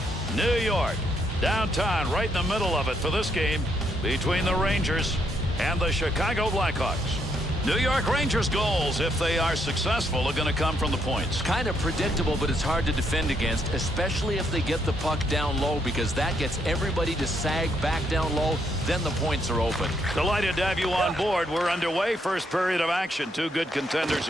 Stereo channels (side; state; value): both; normal; correlation 0.75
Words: New York. Downtown, right in the middle of it for this game between the Rangers and the Chicago Blackhawks. New York Rangers goals, if they are successful, are going to come from the points. Kind of predictable, but it's hard to defend against, especially if they get the puck down low, because that gets everybody to sag back down low. Then the points are open. Delighted to have you on board. We're underway. First period of action. Two good contenders